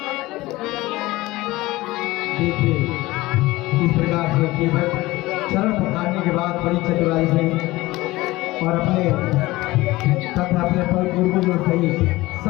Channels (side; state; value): right; quieter; 19.2 dB